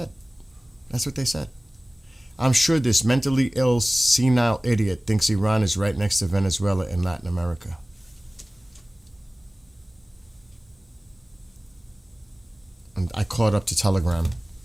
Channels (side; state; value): both; normal; correlation 0.98